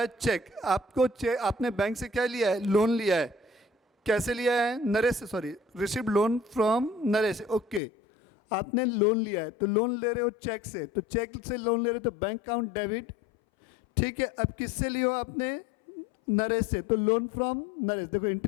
cheque. आपको आपने बैंक से क्या लिया है, लोन लिया है। कैसे लिया है, नरेश से, sorry, received loan from Naresh. Okay, आपने लोन लिया है, तो लोन ले रहे हो चेक से, तो चेक से लोन ले रहे हो तो बैंक अकाउंट डेबिट। ठीक है, अब किससे लियो आपने, नरेश से, तो लोन फ्रॉम नरेश। देखो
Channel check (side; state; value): right; drops out; at 7.8 s